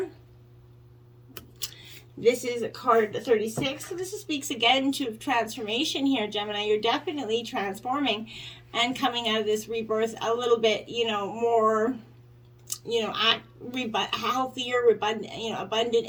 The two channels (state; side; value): identical; both; correlation 1.00